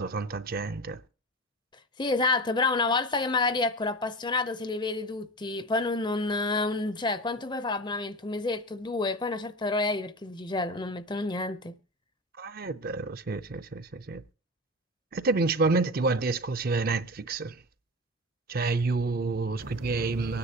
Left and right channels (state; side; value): normal; both; correlation 0.29